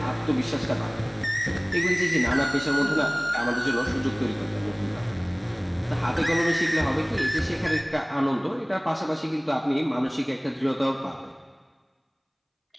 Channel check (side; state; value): both; identical; correlation 1.00